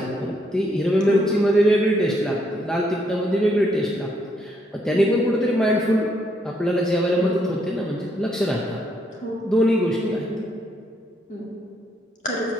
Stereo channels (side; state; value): both; normal; correlation 0.73